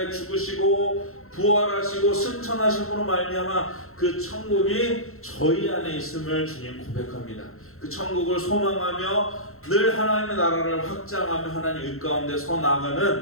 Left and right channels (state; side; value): late; right; 0.62 ms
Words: 죽으시고 부활하시고 승천하심으로 말미암아 그 천국이 저희 안에 있음을 주님 고백합니다. 그 천국을 소망하며 늘 하나님의 나라를 확장하며 하나님 의 가운데 서